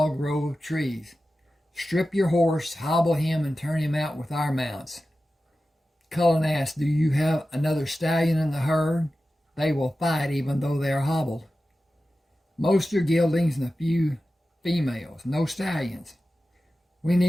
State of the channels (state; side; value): normal; both; correlation 0.94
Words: grove of trees. Strip your horse, hobble him, and turn him out with our mounts. Cullen asked, do you have another stallion in the herd? They will fight even though they are hobbled. Most are geldings and a few females, no stallions. We